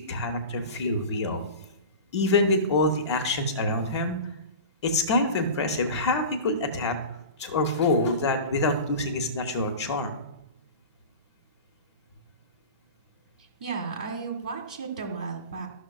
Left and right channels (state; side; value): inverted; both; correlation -0.31